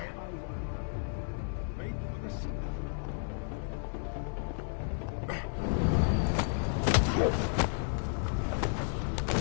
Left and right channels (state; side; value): silent; right; 56 dB below the other